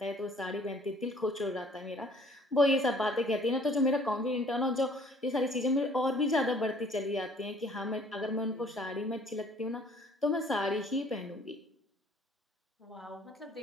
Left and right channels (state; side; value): normal; both; correlation 0.57